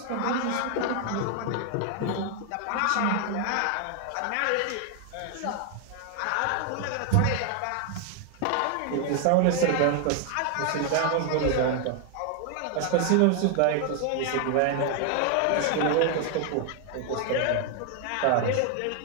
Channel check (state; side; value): different; both; correlation 0.00